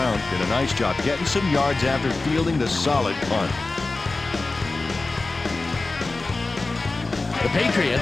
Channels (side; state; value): right; quieter; 3.4 dB